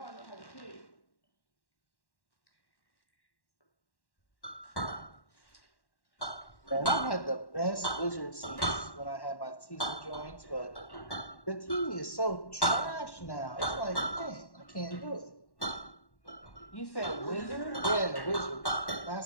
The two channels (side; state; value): right; late; 1.1 ms